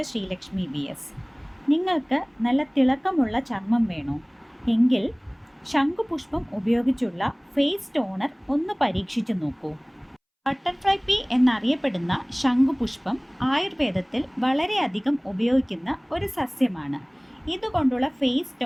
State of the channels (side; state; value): both; identical; correlation 1.00